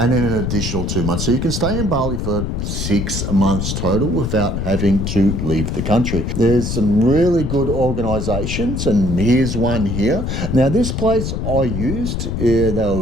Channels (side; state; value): left; noise; rumble, 2 dB below the sound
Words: then an additional 2 months. So you can stay in Bali for 6 months total without having to leave the country. There's some really good organisations, and here's one here. Now this place I used, they